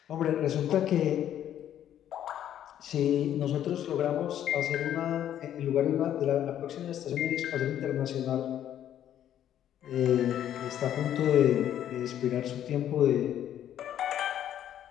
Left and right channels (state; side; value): quieter; right; 10.8 dB